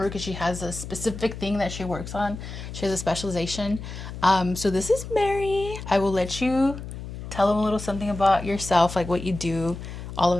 because she has a specific thing that she works on. She has a specialization. So this is Mary. I will let you tell them a little something about yourself, like what you do, all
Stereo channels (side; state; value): left; noise; hum, 10 dB below the sound